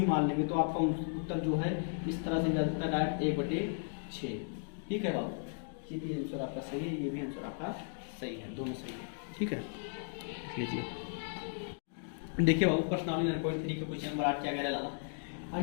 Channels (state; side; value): silent; right; digital silence